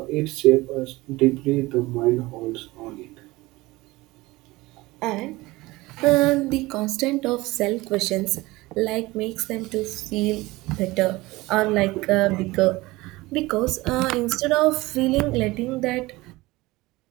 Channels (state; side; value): quieter; left; 20.4 dB